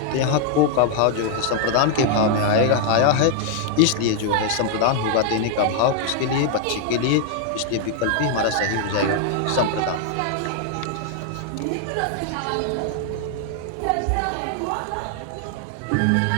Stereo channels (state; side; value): different; both; correlation 0.00